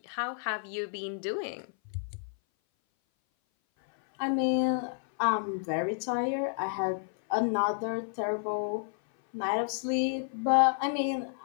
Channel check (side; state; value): right; silent; 57 dB below the other